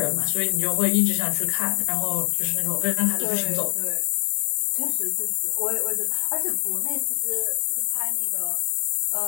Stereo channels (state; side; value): silent; right; 61 dB below the other